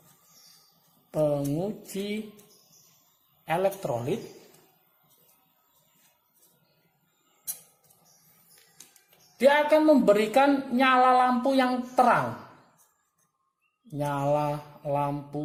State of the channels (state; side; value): identical; both; correlation 1.00